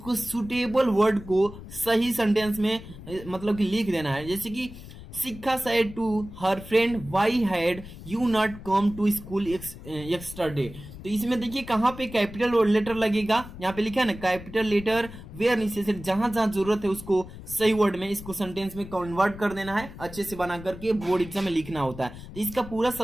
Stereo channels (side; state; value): left; noise; rumble, 14 dB below the sound